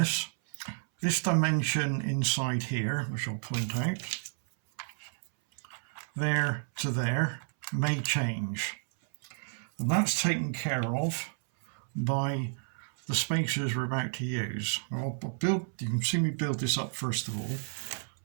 this dimension inside here, which I'll point out, there to there, may change. And that's taken care of by the spacers we're about to use. You can see me build this up first of all.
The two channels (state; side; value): silent; left; 57 dB below the other